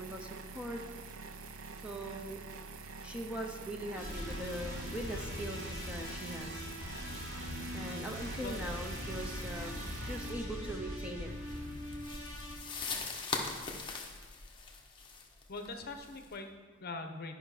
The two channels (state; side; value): normal; both; correlation 0.47